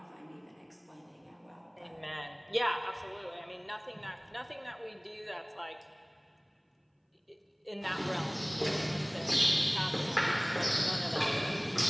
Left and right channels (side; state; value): both; identical; correlation 1.00